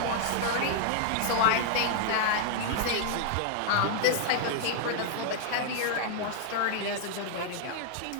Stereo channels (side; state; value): both; different; correlation 0.00